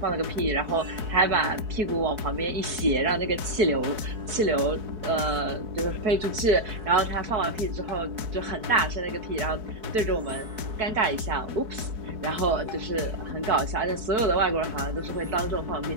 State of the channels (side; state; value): left; late; 4.6 ms